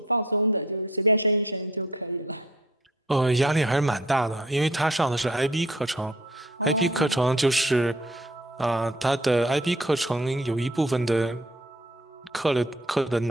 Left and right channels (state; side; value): normal; both; correlation 0.55